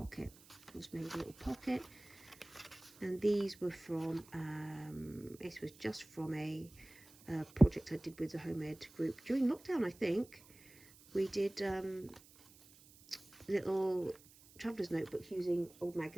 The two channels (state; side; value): noise; right; hiss, 24 dB below the sound